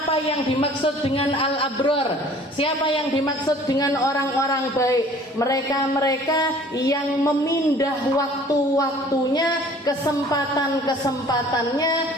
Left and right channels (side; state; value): both; normal; correlation 0.51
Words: yang dimaksud dengan al-abrar. Siapa yang dimaksud dengan orang-orang baik? Mereka-mereka yang memindah waktu-waktunya, kesempatan-kesempatannya,